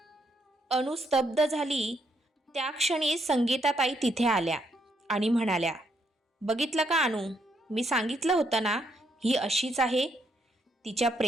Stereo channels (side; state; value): both; normal; correlation 0.75